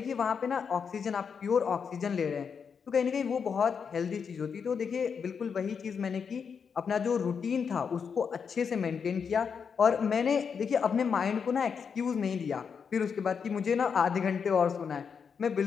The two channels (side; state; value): right; quieter; 6.4 dB